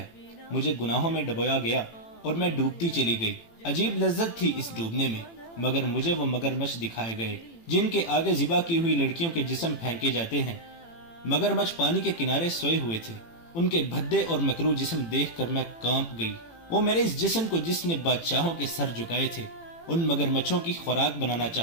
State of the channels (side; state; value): right; late; 18 ms